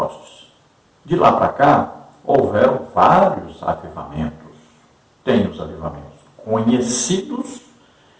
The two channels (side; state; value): both; identical; correlation 1.00